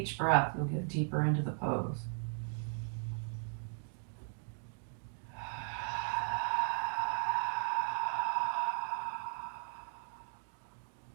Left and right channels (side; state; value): left; silent; 53 dB below the other